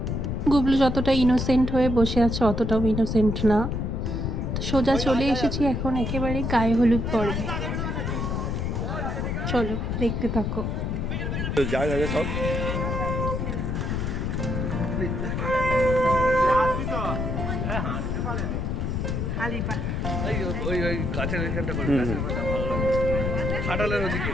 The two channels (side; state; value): left; noise; rumble, 1 dB below the sound